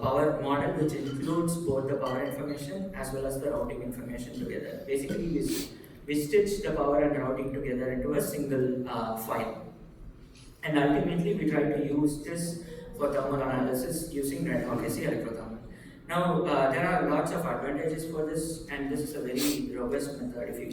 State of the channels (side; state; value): both; identical; correlation 1.00